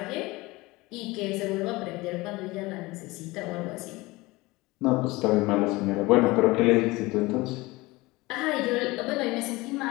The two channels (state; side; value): quieter; right; 21.6 dB